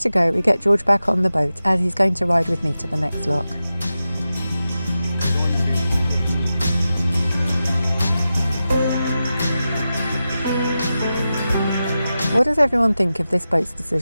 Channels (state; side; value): inverted; both; correlation -0.92